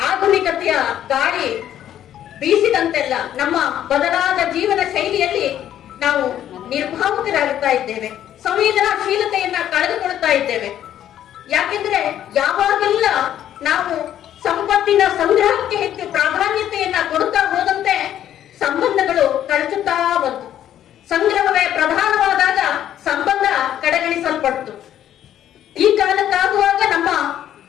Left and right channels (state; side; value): quieter; right; 11.1 dB